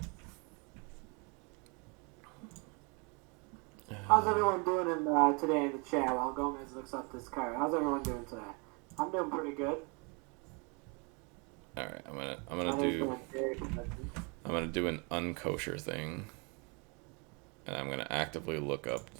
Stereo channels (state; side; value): quieter; left; 32.4 dB